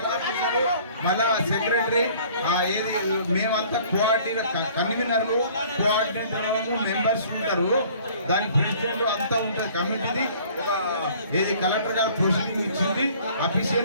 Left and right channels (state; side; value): inverted; both; correlation -0.53